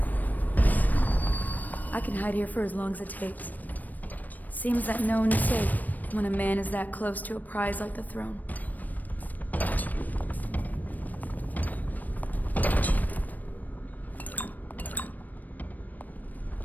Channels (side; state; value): right; late; 0.084 ms